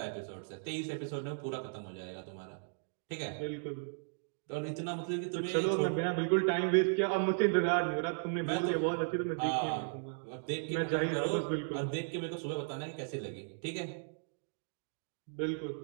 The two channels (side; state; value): left; silent; digital silence